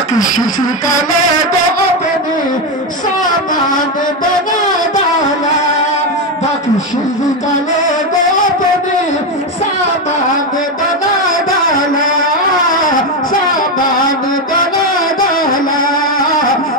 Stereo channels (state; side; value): normal; both; correlation 0.10